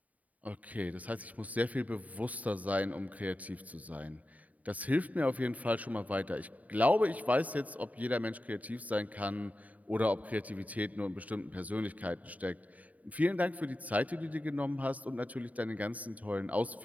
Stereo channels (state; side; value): late; left; 0.072 ms